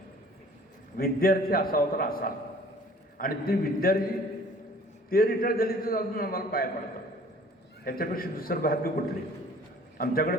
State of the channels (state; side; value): normal; both; correlation 0.52